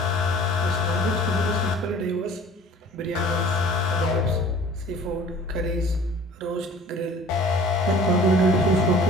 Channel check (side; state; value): both; normal; correlation 0.48